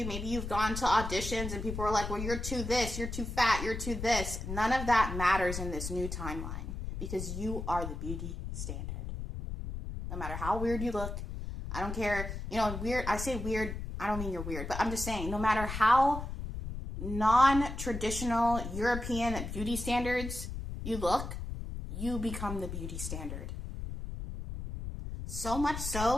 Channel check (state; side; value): noise; left; rumble, 6 dB below the sound